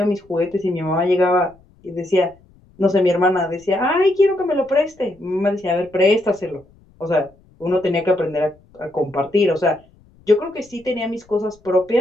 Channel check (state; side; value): noise; left; rumble, 29 dB below the sound